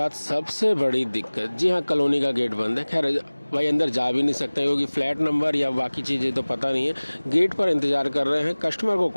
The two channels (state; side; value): inverted; both; correlation -1.00